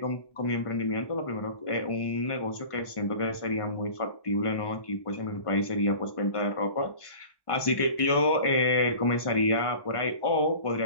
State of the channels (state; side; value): late; right; 1.5 ms